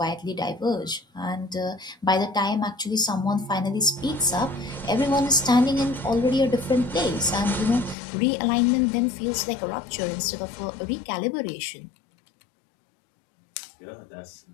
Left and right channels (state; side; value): drops out; right; at 8.0 s